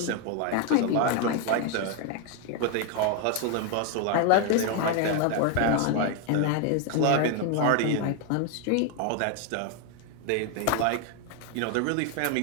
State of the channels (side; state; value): both; different; correlation 0.01